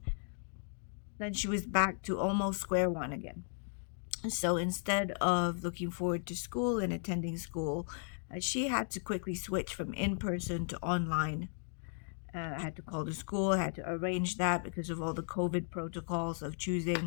then she was back to almost square one again. So instead of looking forward to school and attending school, she had to quickly switch from in person to online. I had to call the school, I had to arrange that because of all the COVID protocols of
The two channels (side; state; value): right; silent; 54 dB below the other